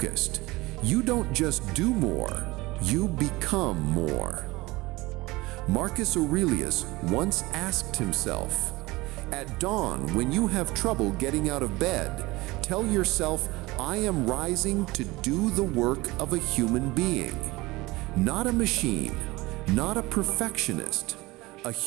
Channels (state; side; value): quieter; left; 21.2 dB